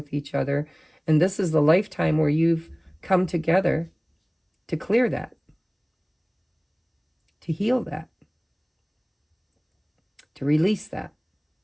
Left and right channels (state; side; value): identical; both; correlation 1.00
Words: each other. And this is the lifetime where you've come together to clear that, to heal that, to release that,